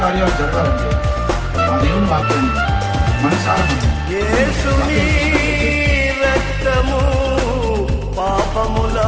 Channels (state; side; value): identical; both; correlation 1.00